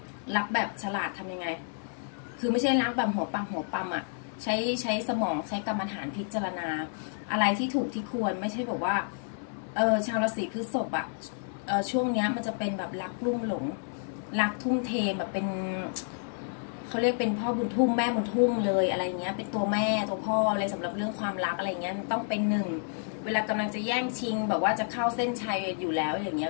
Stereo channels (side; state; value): right; silent; 58 dB below the other